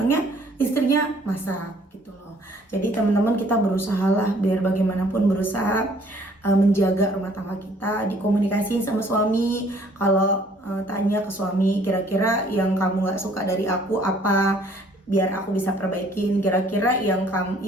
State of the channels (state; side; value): normal; both; correlation 0.59